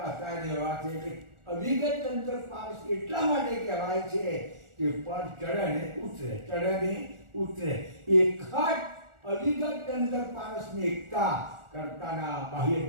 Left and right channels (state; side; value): late; left; 1.4 ms